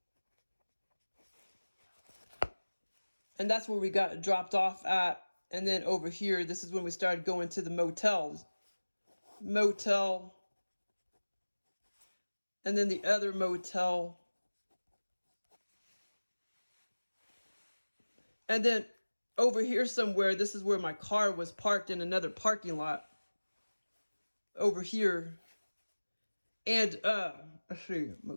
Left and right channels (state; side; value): inverted; both; correlation -1.00